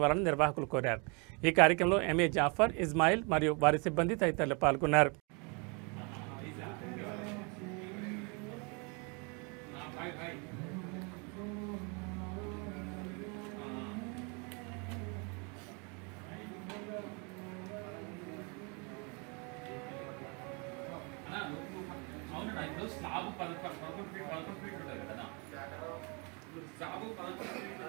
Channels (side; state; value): left; quieter; 32.9 dB